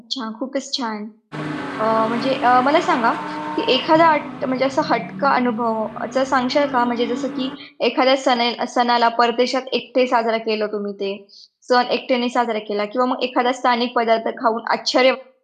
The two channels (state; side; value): identical; both; correlation 1.00